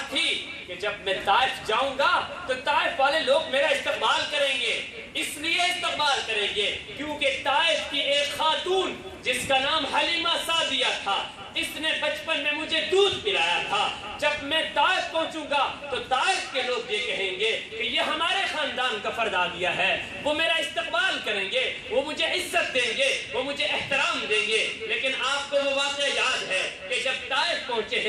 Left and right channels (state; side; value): identical; both; correlation 1.00